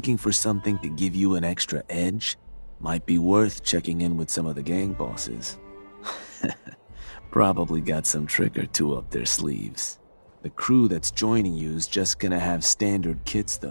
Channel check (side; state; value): both; inverted; correlation -1.00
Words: for something to give you an extra edge, might be worth checking in with some of the gang bosses. Probably got some trick or two up their sleeves. The crew that's joining you is just gonna have standard kits